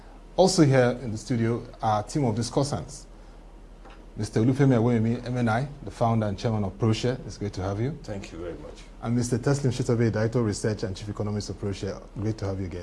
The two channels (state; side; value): identical; both; correlation 1.00